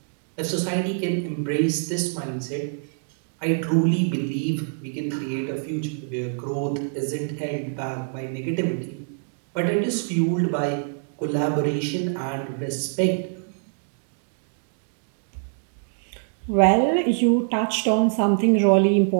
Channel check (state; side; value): silent; left; digital silence